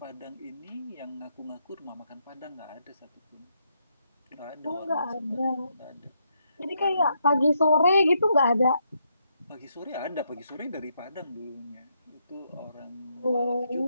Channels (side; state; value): both; inverted; correlation -0.78